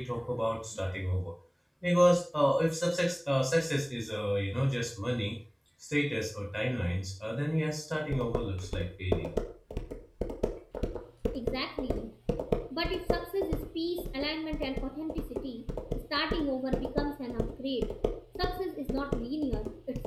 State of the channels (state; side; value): identical; both; correlation 1.00